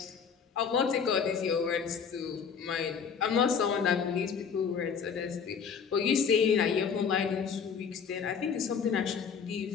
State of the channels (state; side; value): quieter; right; 6.6 dB